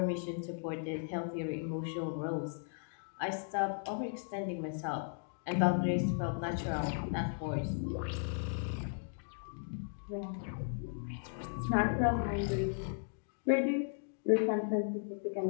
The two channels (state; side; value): silent; right; digital silence